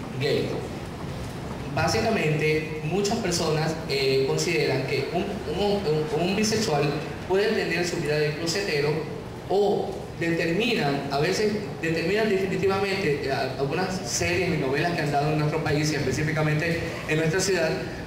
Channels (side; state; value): both; identical; correlation 1.00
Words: gay. Básicamente, muchas personas consideran que un bisexual puede tener su vida de closetero o a veces determinan definitivamente algunas series y novelas que han dado en nuestro país y específicamente en nuestra ciudad,